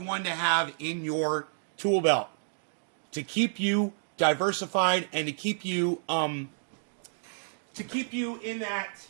one to have in your tool belt to keep you diversified and to keep you in that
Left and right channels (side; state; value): left; silent; digital silence